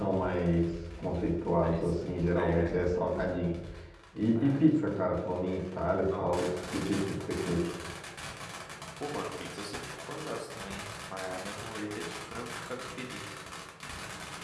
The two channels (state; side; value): identical; both; correlation 1.00